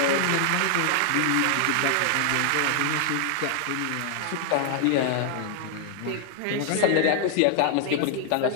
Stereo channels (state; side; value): different; both; correlation 0.00